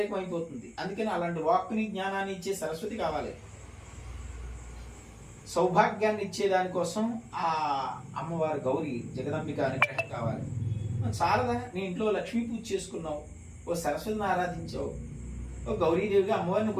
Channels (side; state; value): both; identical; correlation 1.00